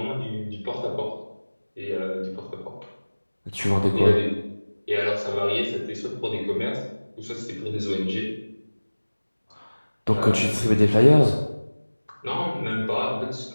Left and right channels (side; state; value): both; inverted; correlation -1.00